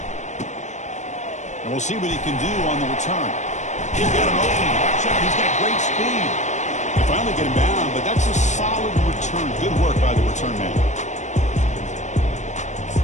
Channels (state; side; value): late; right; 0.34 ms